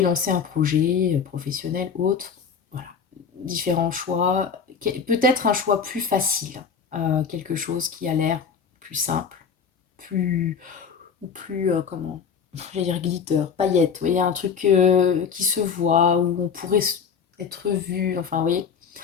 lancé un projet professionnel, autre, voilà, différents choix, peut-être un choix plus facile, quelque chose qui a l'air plus simple, plus, ou plus, comment, j'allais dire glitter, paillettes, vous voyez, un truc qui se voit, où on pourrait être vu, enfin, vous voyez,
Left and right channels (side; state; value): right; quieter; 6.3 dB